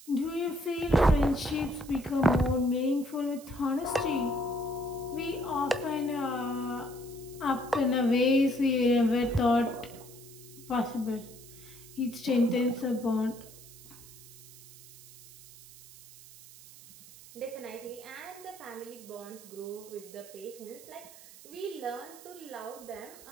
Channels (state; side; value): noise; right; hiss, 19 dB below the sound